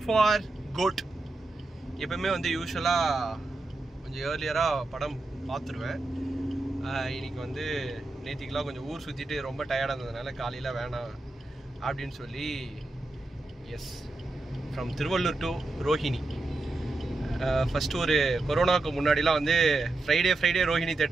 for GOAT. எப்பவுமே வந்து யூஷுவலாக கொஞ்சம் ஏர்லியராக படம் பார்த்துருவேன். இன்னைக்கு வந்து நேற்றுக்கெலாம் கொஞ்சம் ஊர் சுற்றிட்டு ரொம்ப டயர்டாக இருந்ததுனால காலையில் வேணாம் அப்படின்னு சொல்லி எஸ் from Tiruvallur to Rohini. First ஒரு கொரோனாவுக்கு முன்னாடிலாம் வந்து ஃப்ரைடே ரோஹிணி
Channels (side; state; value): left; quieter; 3.1 dB